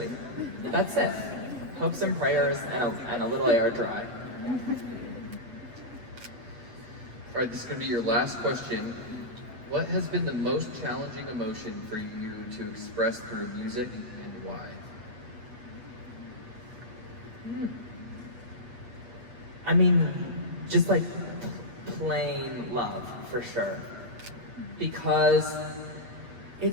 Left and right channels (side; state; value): left; late; 8.0 ms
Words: That's it. Hopes and prayers and a little air dry. All right, this is going to be your last question. What has been the most challenging emotion for you to express through music and why? I mean, just like plain love, for sure. Because